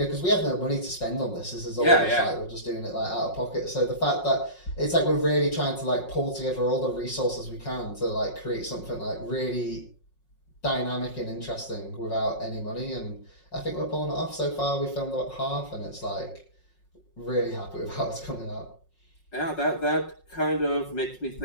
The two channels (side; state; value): right; late; 5.5 ms